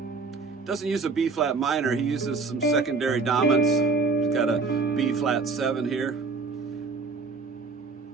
doesn't use a B flat minor, he uses some secondary dominants. He's got a B flat 7 here.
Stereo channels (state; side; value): quieter; left; 4.3 dB